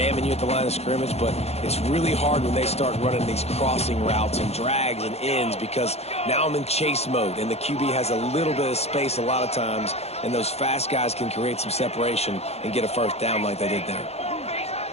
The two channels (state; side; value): late; right; 0.30 ms